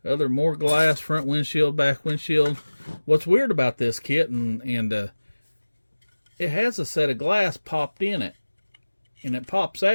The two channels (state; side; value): inverted; both; correlation -1.00